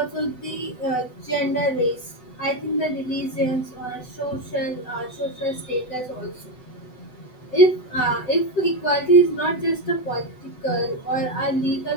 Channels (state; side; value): late; right; 7.9 ms